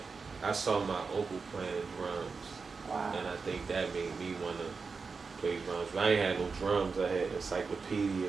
I saw my uncle playing drums, and I think that made me want to play drums. But I ain't had no drums. I had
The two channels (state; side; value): quieter; left; 4.8 dB